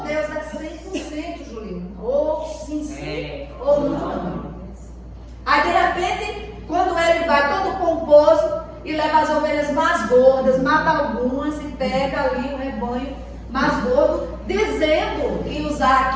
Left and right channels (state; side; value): identical; both; correlation 1.00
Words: Deus é 100%, Julinho. Ou sim, ou não. Aí de repente, quando ele vai todo pomposo e leva as ovelhas mais gordas, mata algumas e pega ali o rebanho mais gordo, dizendo que usar